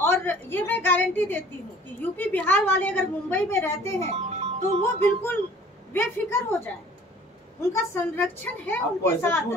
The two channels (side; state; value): both; normal; correlation 0.51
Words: ये मैं गारंटी देती हूँ कि यूपी बिहार वाले अगर मुंबई में रहते हैं तो वो बिल्कुल बेफिक्र हो जाए। उनका संरक्षण है उनके साथ। क्यों